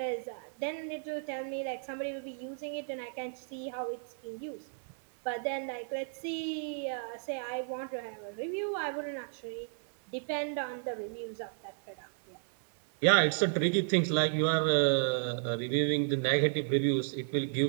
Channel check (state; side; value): silent; left; 56 dB below the other